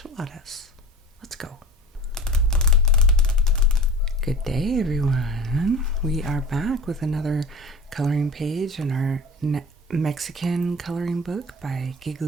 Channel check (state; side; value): normal; both; correlation 0.37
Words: Let's go. Good day, everyone. We are back with another coloring page in our Mexican coloring book by